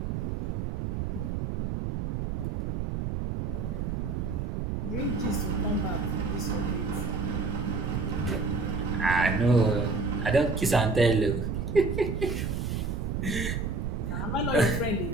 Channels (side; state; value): right; noise; rumble, 2 dB below the sound